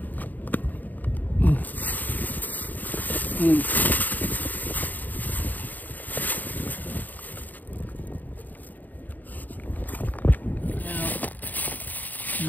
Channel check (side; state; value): right; late; 0.085 ms